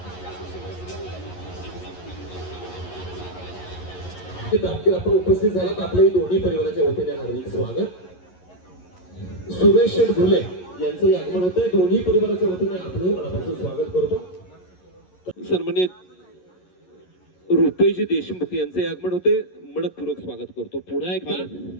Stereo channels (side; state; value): right; late; 11 ms